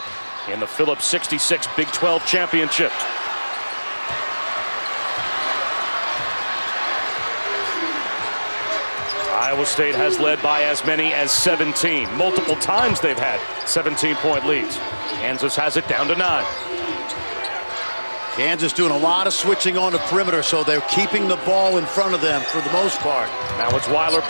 in the Phillips 66 Big 12 Championship. Iowa State has led by as many as 17. Multiple times they've had 17-point leads. Kansas has it down to 9. Kansas doing a lot of switching on the perimeter, so they're keeping the ball in front of them for the most part. Now it's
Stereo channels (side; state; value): both; inverted; correlation -1.00